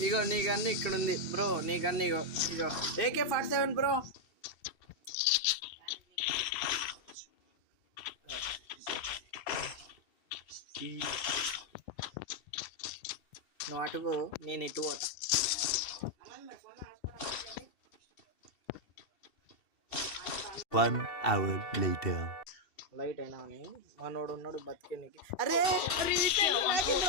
ఇగో నీ గన్ను ఇక్కడ ఉంది బ్రో. నీ గన్ను ఇగో AK-47 బ్రో. నువ్వు అటుకు నేను ఇటు పోతా. One hour later. లైట్ అయినా అని మనోడు ఉన్నాడు బతికే నీకు. అరే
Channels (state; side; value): late; right; 2.7 ms